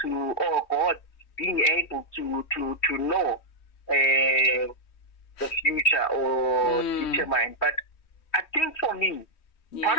to, or God being able to know the future or determine. But I think for me, part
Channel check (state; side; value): late; right; 3.2 ms